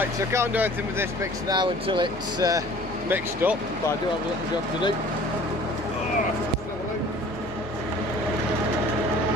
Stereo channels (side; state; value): both; normal; correlation 0.49